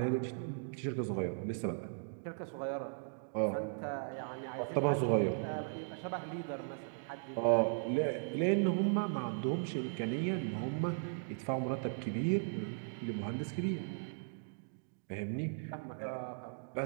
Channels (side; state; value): left; silent; digital silence